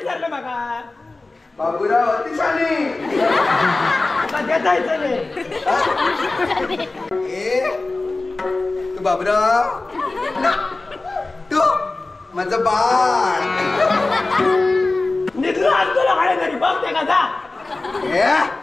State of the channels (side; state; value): right; quieter; 3.3 dB